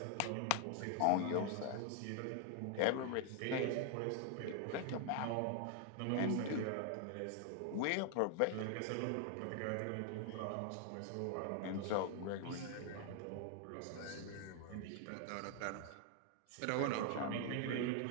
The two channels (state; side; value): different; both; correlation 0.00